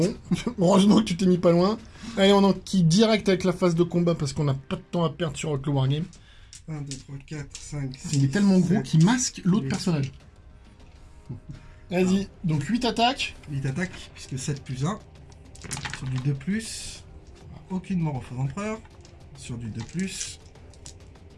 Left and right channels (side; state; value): both; identical; correlation 1.00